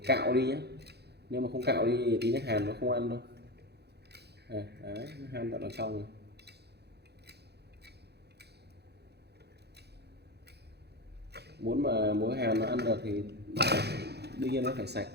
cạo đi nhé, nếu mà không cạo đi thì tí nó hàn nó không ăn đâu. Đấy, nó han tận ở trong rồi. Muốn mà muối hàn nó ăn được thì đương nhiên nó phải sạch,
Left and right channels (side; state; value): left; late; 0.48 ms